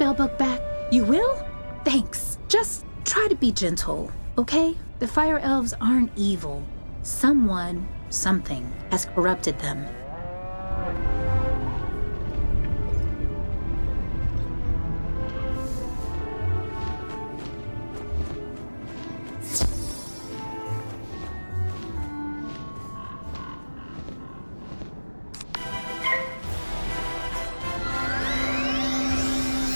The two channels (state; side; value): inverted; both; correlation -1.00